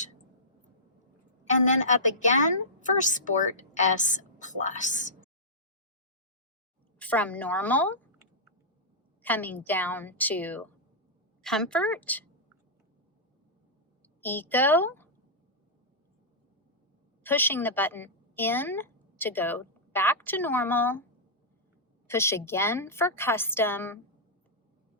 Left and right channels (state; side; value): normal; both; correlation -0.14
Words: and then up again for Sport S+. From normal, coming down to comfort, eco, pushing the button in to go back to normal, push again for custom,